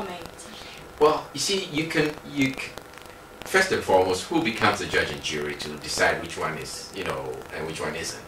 Well, you see, you can first and foremost, who becomes the judge and jury to decide which one is, and which one isn't?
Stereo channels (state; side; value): identical; both; correlation 1.00